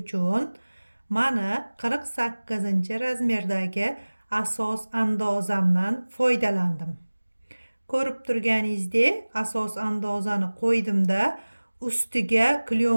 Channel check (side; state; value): both; inverted; correlation -1.00